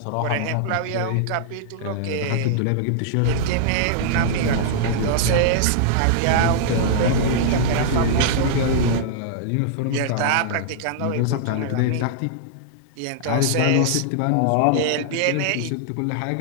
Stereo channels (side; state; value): both; different; correlation -0.01